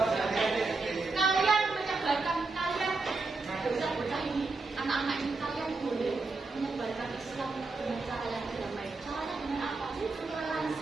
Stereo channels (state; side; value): quieter; left; 3.7 dB